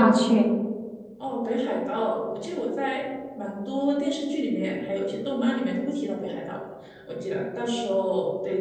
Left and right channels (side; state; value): both; identical; correlation 1.00